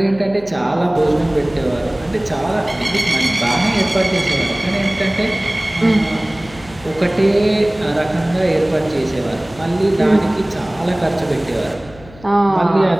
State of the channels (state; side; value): noise; left; hum, 21 dB below the sound